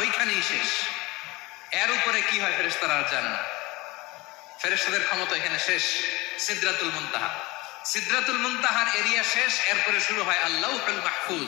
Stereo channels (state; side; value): quieter; right; 22.3 dB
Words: ওইখানেই শেষ। এর উপরে কি হয় ফেরেশতারা আর জানে না। ফেরেশতাদের ক্ষমতা এখানে শেষ। সিদরাতুল মুনতাহা, সিদরাতুল মুনতাহার এরিয়া শেষ। এরপরে শুরু হয় আল্লাহুল